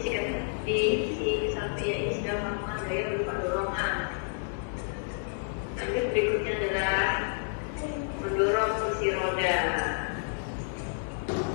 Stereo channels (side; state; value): right; silent; 57 dB below the other